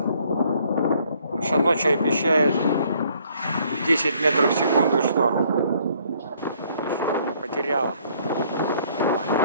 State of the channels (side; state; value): both; inverted; correlation -0.63